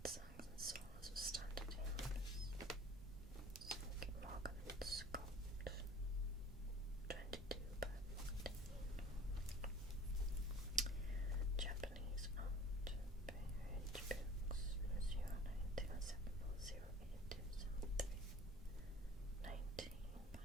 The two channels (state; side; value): noise; right; rumble, 13 dB below the sound